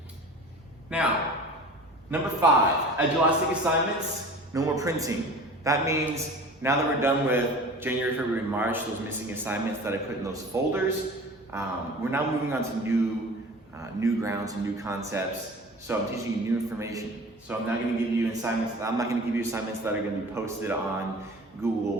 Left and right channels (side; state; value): both; normal; correlation 0.40